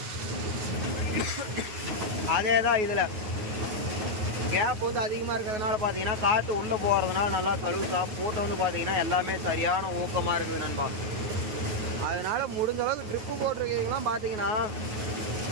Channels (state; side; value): late; left; 9.3 ms